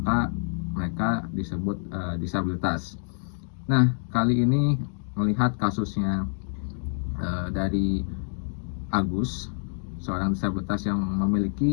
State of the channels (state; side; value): silent; right; digital silence